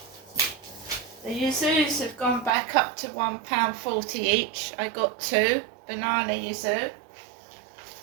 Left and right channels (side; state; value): left; drops out; at 2.5 s